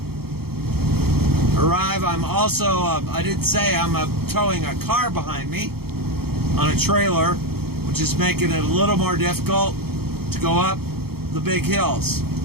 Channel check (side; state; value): left; late; 0.95 ms